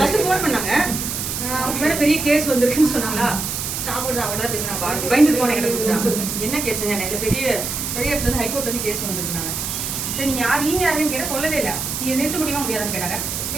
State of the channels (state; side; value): noise; right; hiss, 3 dB below the sound